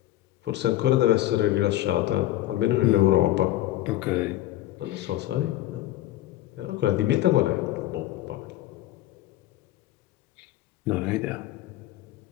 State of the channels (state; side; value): quieter; right; 14.8 dB